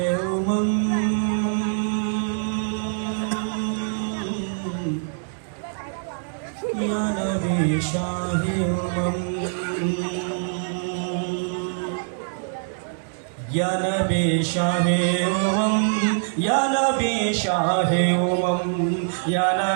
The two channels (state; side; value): silent; left; digital silence